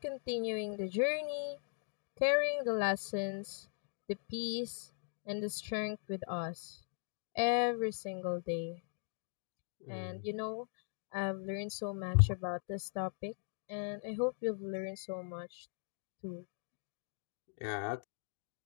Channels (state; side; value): silent; right; 51 dB below the other